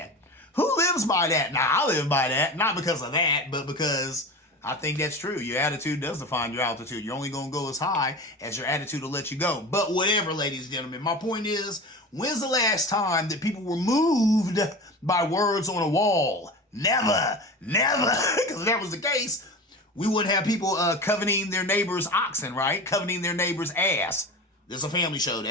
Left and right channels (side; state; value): both; normal; correlation 0.31